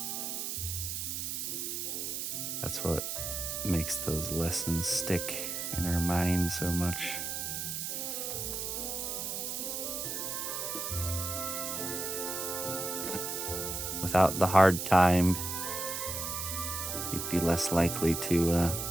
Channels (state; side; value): noise; right; hiss, 3 dB below the sound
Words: That's what makes those lessons stick in our mind so much. Without the hard time, you'd be less likely to